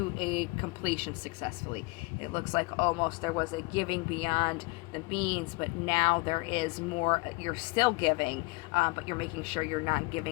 a completion successfully. It looks like almost there was a giving beyond the means, but now there is more. You're still giving, but you're making sure you're not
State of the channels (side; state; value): right; quieter; 25.4 dB